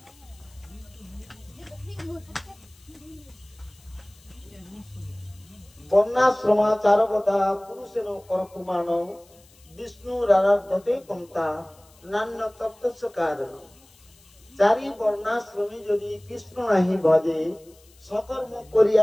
বর্ণাশ্রমাচারবতা পুরুষের পরকুমান বিষ্ণুর আরাধ্যতে পন্থা নান্য তত্ত্বস্য কারণ। চারি বর্ণাশ্রমী যদি কৃষ্ণ নাহি ভজে, সকর্ম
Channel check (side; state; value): left; noise; hiss, 28 dB below the sound